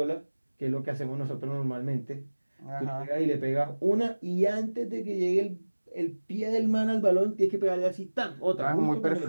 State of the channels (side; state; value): both; inverted; correlation -1.00